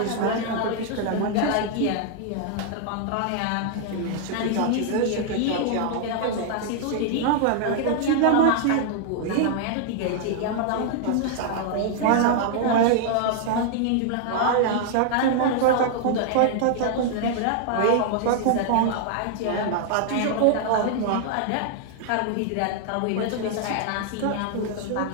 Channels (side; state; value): both; different; correlation 0.00